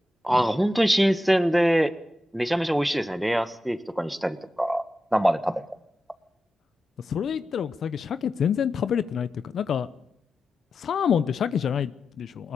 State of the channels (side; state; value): both; normal; correlation 0.91